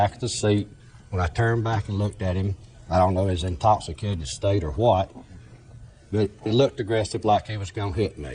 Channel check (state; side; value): identical; both; correlation 1.00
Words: of the seat. When I turned back and looked at him, I don't know if he was in intoxicated state or what, but it looked aggressive like he was going to hit